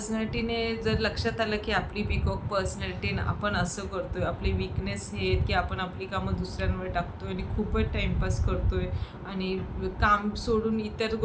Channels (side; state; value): both; identical; correlation 1.00